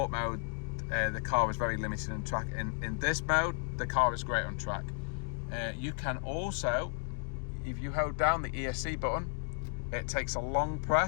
mode, the car is very limited on track. In this mode, the car is great on track. You can also, if you hold down the ESC button, it takes a long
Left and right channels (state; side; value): silent; right; digital silence